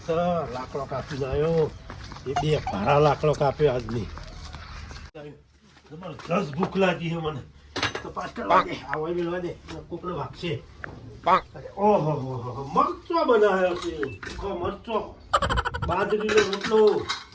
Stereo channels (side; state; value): both; identical; correlation 1.00